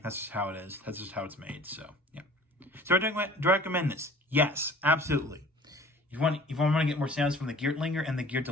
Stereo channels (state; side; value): normal; both; correlation 0.47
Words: that's just how it is. That's just how it's made, so yeah. So do I recommend this? Yes, absolutely. If you want to get more sounds from the Geertlinger and the